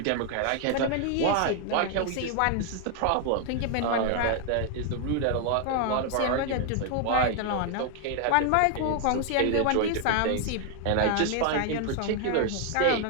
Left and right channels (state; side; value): different; both; correlation 0.00